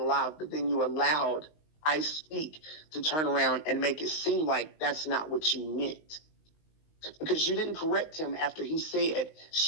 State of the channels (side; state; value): right; late; 19 ms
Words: live, but then you allowed I Speak to turn around and make it seem like that's not what you meant. Because you didn't correct him after he said